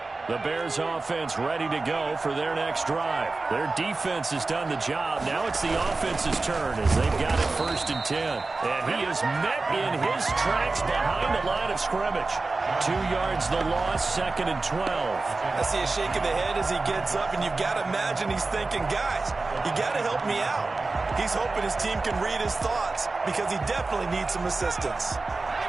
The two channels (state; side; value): quieter; left; 3.6 dB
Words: The Bears offense ready to go for their next drive. Their defense has done the job. Now it's the offense's turn as they've got it 1st and 10. And he is met in his tracks behind the line of scrimmage. 2 yards the loss, 2nd and 12. I see a shake of the head as he gets up, and you've got to imagine he's thinking, guys, you got to help me out. He's hoping his team can read his thoughts because he definitely needs some assistance.